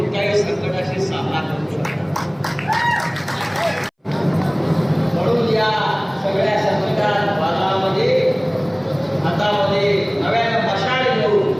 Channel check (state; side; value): identical; both; correlation 1.00